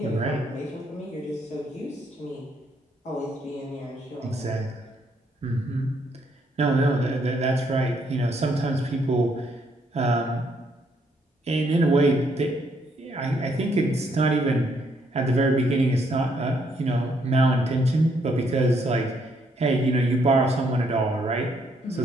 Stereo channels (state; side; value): normal; both; correlation 0.72